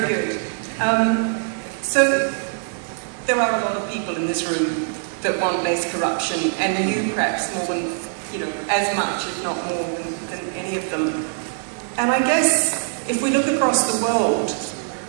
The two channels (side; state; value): left; silent; digital silence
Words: good. So there are a lot of people in this room that want less corruption, and you perhaps more than, as much, if not more than any of them. And I guess if we look across the world,